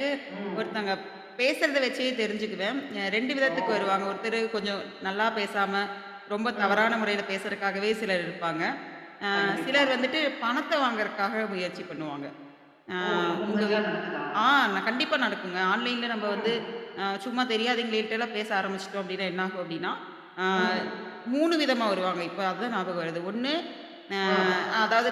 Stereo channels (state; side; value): identical; both; correlation 1.00